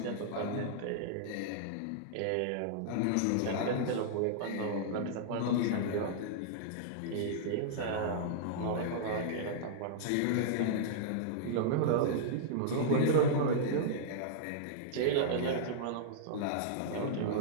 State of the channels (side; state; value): both; different; correlation -0.02